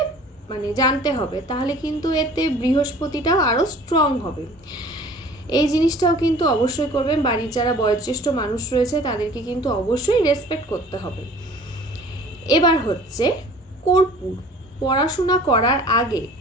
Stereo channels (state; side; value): normal; both; correlation 0.48